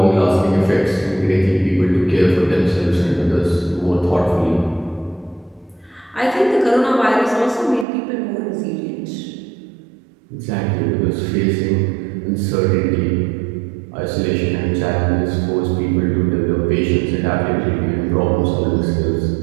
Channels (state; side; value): drops out; left; at 7.9 s